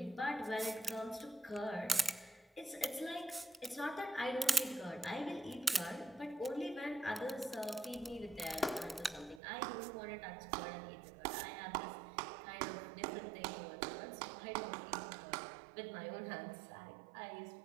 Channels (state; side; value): drops out; left; at 9.4 s